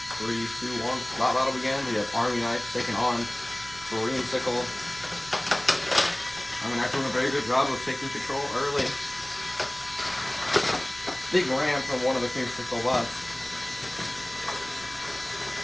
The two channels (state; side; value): noise; right; rumble, 21 dB below the sound